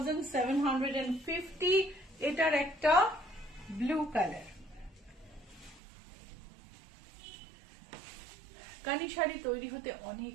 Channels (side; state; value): left; drops out; at 5.8 s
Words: এটার একটা ব্লু কালার। কানি শাড়ি তৈরি হতে অনেক